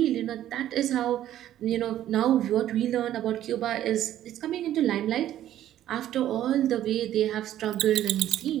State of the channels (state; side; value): quieter; left; 12.2 dB